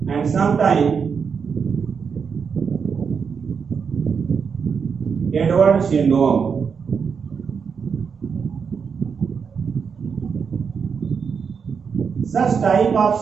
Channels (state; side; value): quieter; left; 6.2 dB